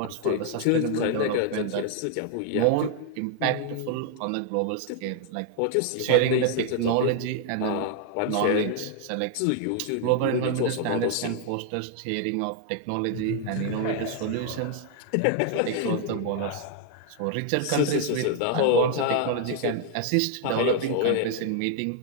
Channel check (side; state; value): both; different; correlation 0.00